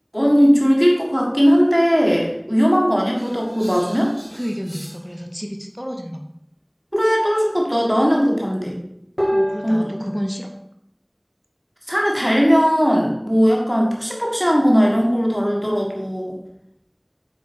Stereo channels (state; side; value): identical; both; correlation 1.00